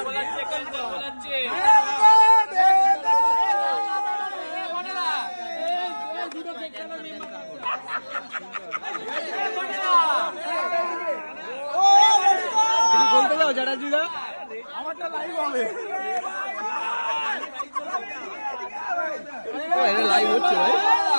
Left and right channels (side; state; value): both; inverted; correlation -1.00